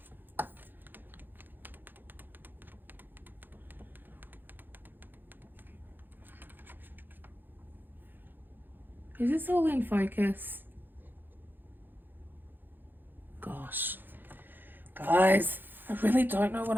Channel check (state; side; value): late; left; 0.092 ms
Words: Is this all in focus? Gosh. Guys, I really don't know what